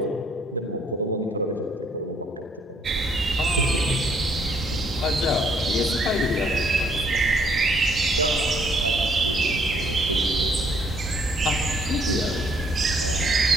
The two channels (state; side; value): normal; both; correlation 0.65